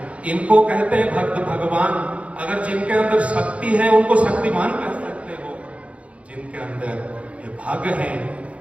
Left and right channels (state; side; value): late; left; 0.063 ms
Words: इनको कहते हैं भक्त भगवान। अगर जिनके अंदर शक्ति है उनको शक्तिमान कह सकते हो, जिनके अंदर ये भाग है